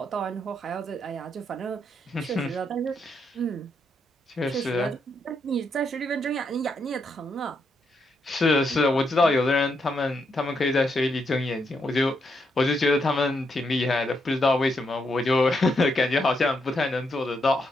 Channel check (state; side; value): normal; both; correlation 0.79